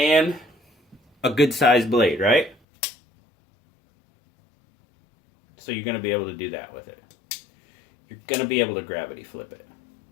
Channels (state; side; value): drops out; right; at 2.6 s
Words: a good sized blade, right? So you're going to be able to do that with it. You're going to be able to gravity flip it.